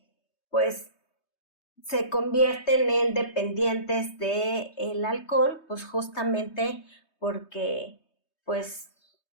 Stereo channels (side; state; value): right; late; 3.2 ms